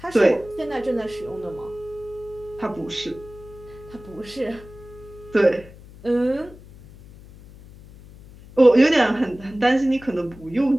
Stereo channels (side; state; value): left; noise; hum, 20 dB below the sound